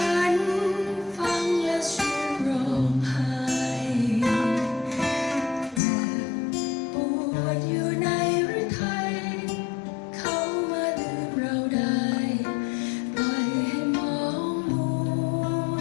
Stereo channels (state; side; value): drops out; right; at 5.8 s